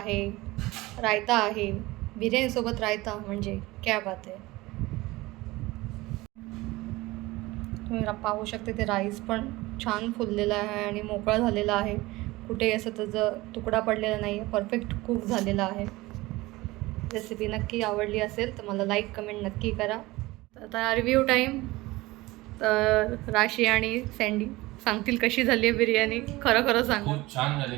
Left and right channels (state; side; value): quieter; left; 20.1 dB